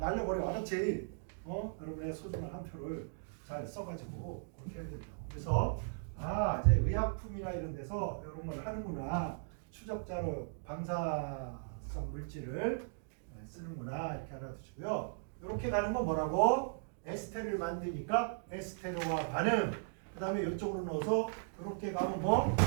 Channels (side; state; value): left; silent; digital silence